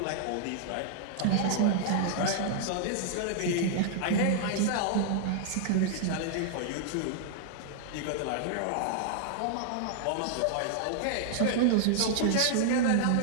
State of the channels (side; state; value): both; different; correlation -0.01